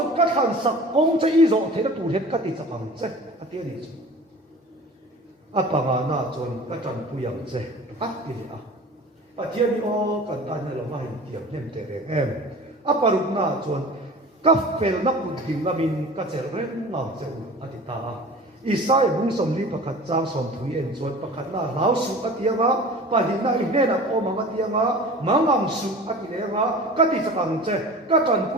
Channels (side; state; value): both; normal; correlation 0.40